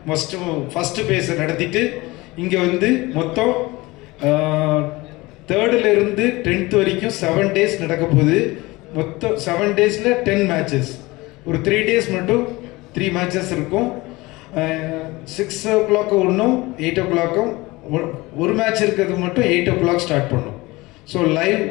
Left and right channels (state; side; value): quieter; right; 21.6 dB